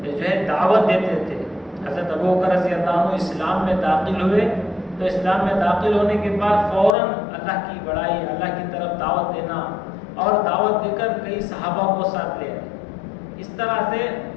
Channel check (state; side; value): drops out; right; at 7.0 s